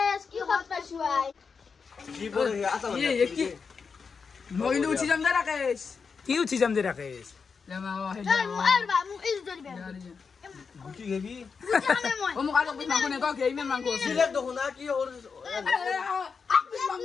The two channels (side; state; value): right; quieter; 5.5 dB